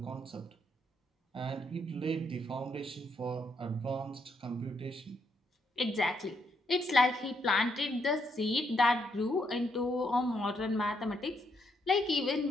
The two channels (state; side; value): normal; both; correlation 0.76